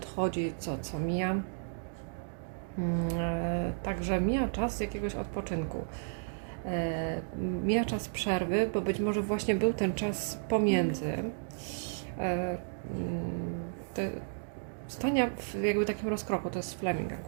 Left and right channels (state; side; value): silent; left; digital silence